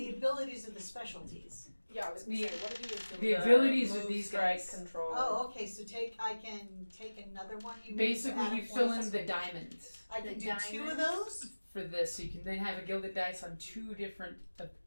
abilities are the specialties. Yeah, I was going to say, what are the abilities are these guys. Control. Oh, okay, so I can take another one? Basically, you fill in the diamond. I can do 2 of those? For this, so you can then have a gilded dice on 2 different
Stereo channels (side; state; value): both; inverted; correlation -1.00